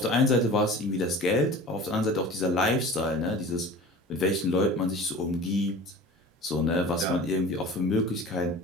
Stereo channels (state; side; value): normal; both; correlation 0.39